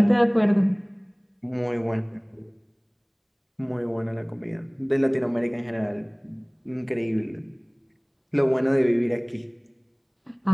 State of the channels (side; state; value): both; identical; correlation 1.00